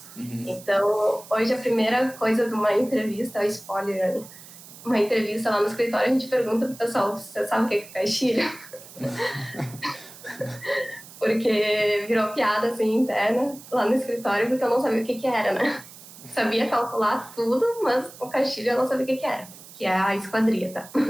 Então, hoje a primeira coisa de uma entrevista, é spoiler, uma entrevista lá no escritório, a gente pergunta pro pessoal, você sabe o que é caixilho? Porque virou piada, assim, interna lá no escritório, porque eu não sabia o que era, né? Sabia calcular tudo, mas o caixilho eu não sabia o que era, que é a esquadria, tá?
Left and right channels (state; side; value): noise; right; hiss, 18 dB below the sound